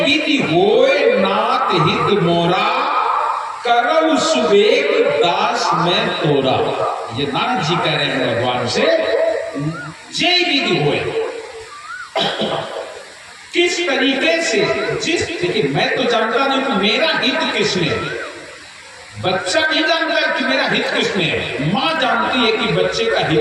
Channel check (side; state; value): both; identical; correlation 1.00